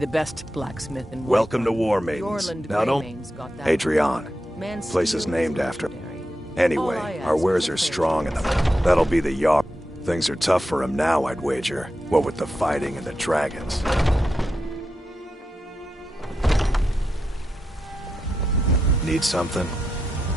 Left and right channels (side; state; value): both; normal; correlation 0.87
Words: best blacksmith in Whiterun. Welcome to War Maidens. Now don't... Adrian. Place is named after... Anyway, our wares are strong enough. That'll be the Jarl. Things are tough for him now, I'd wager. What with the fighting and the dragons. Need something?